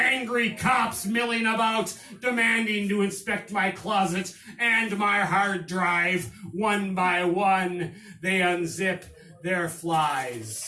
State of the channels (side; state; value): both; identical; correlation 1.00